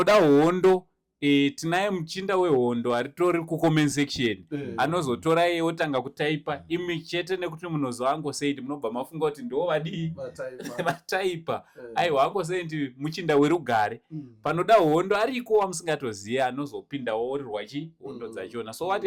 hondo, tinaye muchinda wehondo aritori kucomment section, anozotora iye otanga kutaipa imi chete nekuti munozwa Uncle munobva mafunga kuti ndo vadii vataipa. Aiwa Uncle muchinda werugare. Panoda hondo ariko wamusingatoziva anozopindawo orirwa hondo dzachona. So what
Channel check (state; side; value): identical; both; correlation 1.00